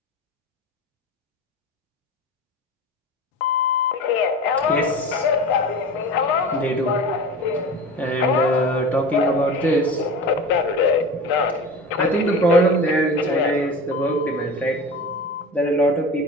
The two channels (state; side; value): normal; both; correlation 0.33